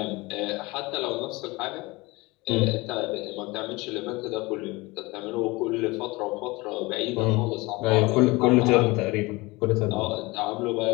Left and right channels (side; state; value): right; quieter; 23.1 dB